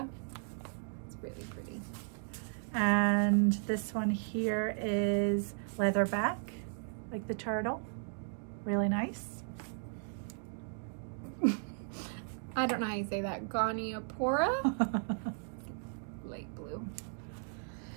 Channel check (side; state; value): left; silent; 54 dB below the other